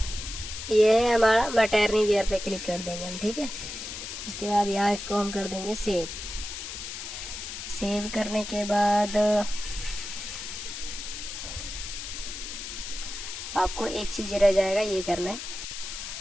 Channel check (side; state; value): left; noise; hiss, 8 dB below the sound